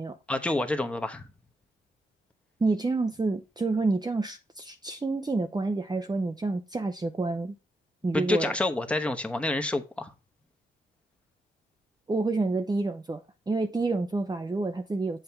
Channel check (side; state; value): both; normal; correlation 0.83